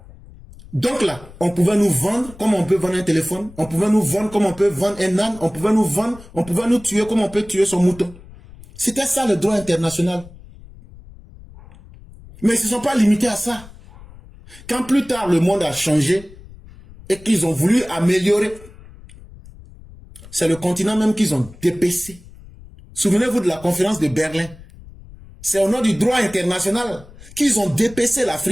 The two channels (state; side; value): noise; left; rumble, 20 dB below the sound